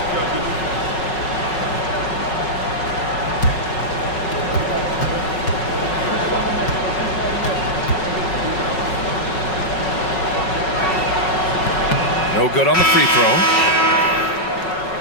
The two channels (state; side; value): late; right; 5.4 ms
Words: No good on the free throw.